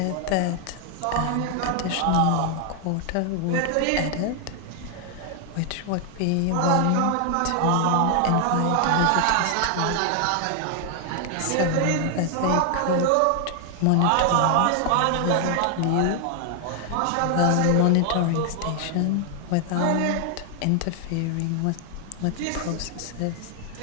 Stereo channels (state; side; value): different; both; correlation 0.00